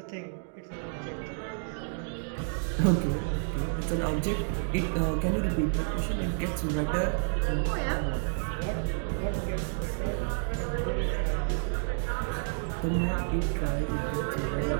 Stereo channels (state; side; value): silent; left; digital silence